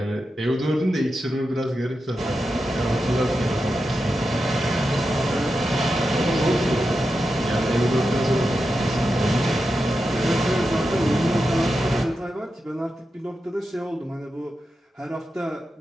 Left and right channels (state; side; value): normal; both; correlation 0.89